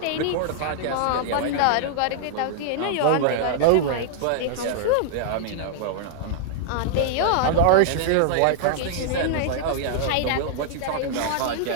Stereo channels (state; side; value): different; both; correlation -0.01